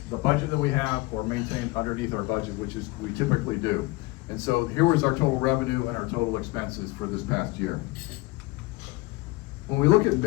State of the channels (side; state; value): right; quieter; 22.2 dB